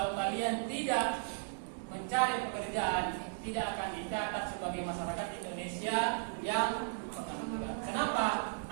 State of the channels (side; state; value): left; silent; digital silence